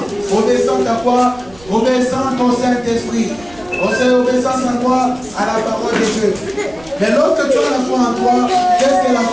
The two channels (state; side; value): noise; right; rumble, 24 dB below the sound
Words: Obéissante à quoi? Obéissante au Saint-Esprit. Obéissance à quoi? À la parole de Dieu. Mais lorsque tu as la foi en toi, qu'est-ce que la